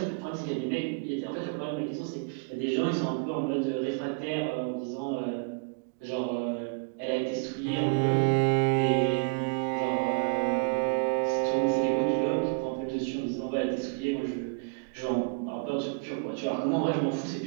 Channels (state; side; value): quieter; left; 32.8 dB